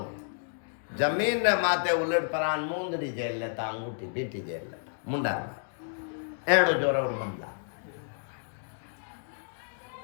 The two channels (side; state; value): right; silent; digital silence